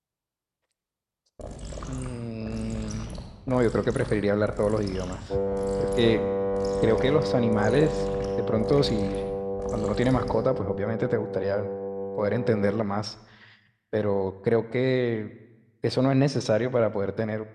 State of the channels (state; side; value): identical; both; correlation 1.00